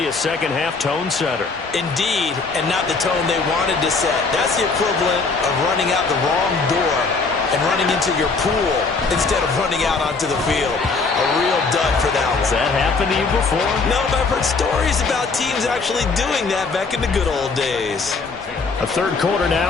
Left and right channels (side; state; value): right; quieter; 4.3 dB